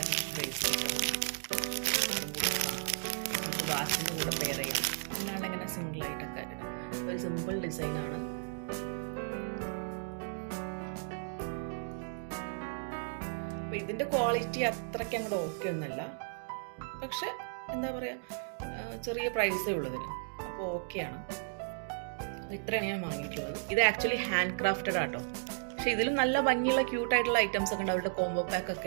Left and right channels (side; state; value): left; silent; digital silence